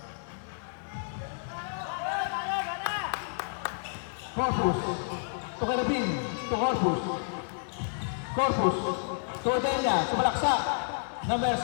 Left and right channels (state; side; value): silent; right; digital silence